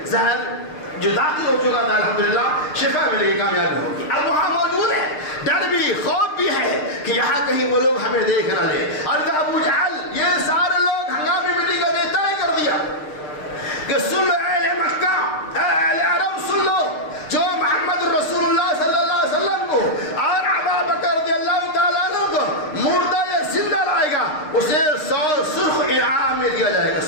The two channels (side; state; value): right; late; 6.6 ms